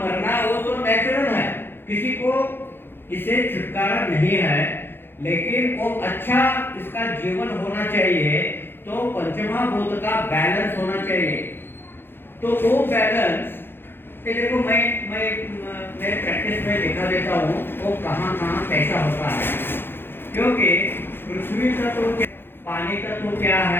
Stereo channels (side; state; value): right; late; 0.10 ms